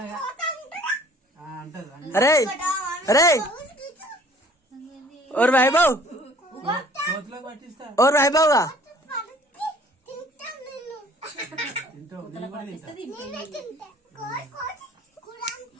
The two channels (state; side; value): normal; both; correlation 0.53